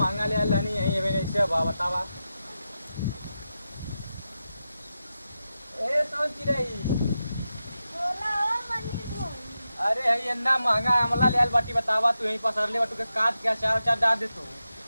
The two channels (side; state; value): both; inverted; correlation -0.90